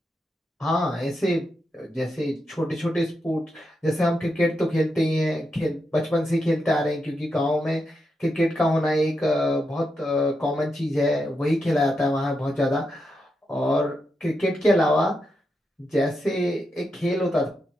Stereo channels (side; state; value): both; normal; correlation 0.85